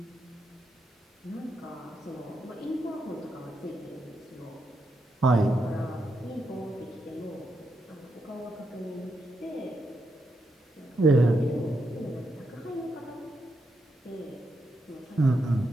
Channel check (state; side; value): normal; both; correlation 0.83